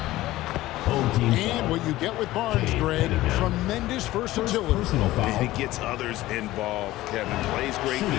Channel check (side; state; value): right; quieter; 16.7 dB